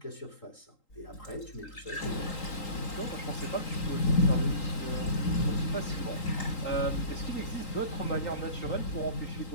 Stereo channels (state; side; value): late; right; 3.8 ms